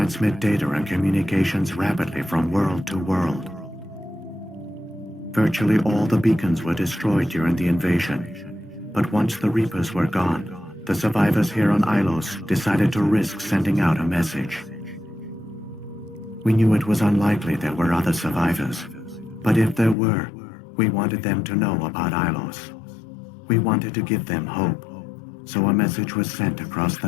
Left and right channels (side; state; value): right; drops out; at 20.0 s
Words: data and communications rapidly from world to world. Virtually all the beacons were destroyed during the invasion, but once the Reapers were gone, the survivors here on Ilos decided to risk sending out a message. We knew it was unlikely there were other survivors, but if there were, we wanted them to know about Ilos. We wanted to give them hope, so a message was sent across